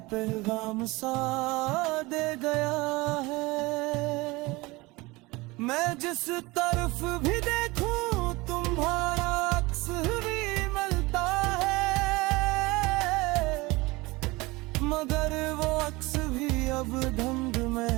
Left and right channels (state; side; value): quieter; left; 22.6 dB